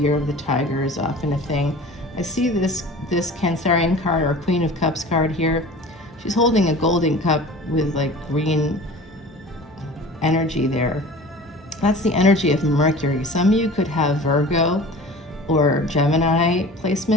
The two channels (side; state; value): both; normal; correlation 0.40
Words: of the Tiger is often a thing. I see this Cancerian card, or Queen of Cups card here. She's holding a golden cup with like green energy there. That's the energy of Mercury. Some of you could have Virgo or Gemini